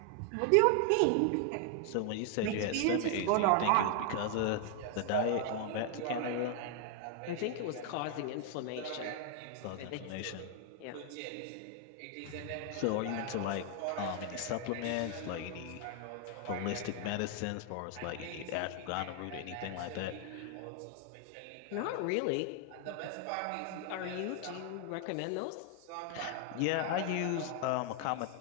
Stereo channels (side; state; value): both; different; correlation 0.00